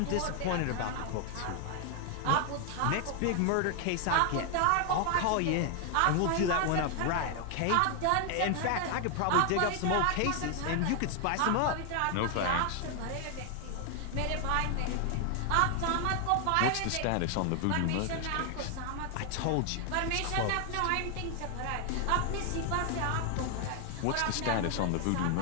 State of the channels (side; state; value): both; different; correlation 0.00